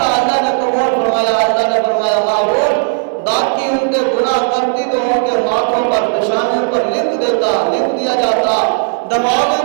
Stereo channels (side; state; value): left; silent; digital silence